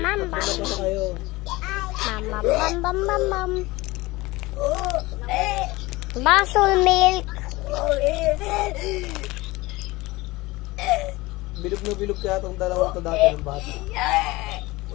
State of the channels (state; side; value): quieter; right; 20.9 dB